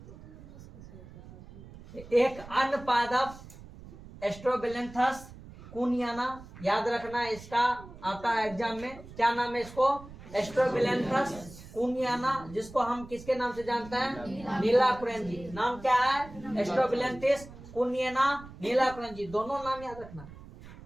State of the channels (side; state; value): right; noise; rumble, 17 dB below the sound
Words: एक अन्य पादप एस्ट्रोबिलेंथस कुनियाना, याद रखना इसका आता है एग्जाम में, क्या नाम है इसको, एस्ट्रोबिलेंथस कुनियाना, जिसको हम किसके नाम से जानते हैं, नीलाकुरेंजी। नाम क्या है, एस्ट्रोबिलेंथस कुनियाना, नीलाकुरेंजी, दोनों नाम याद रखना।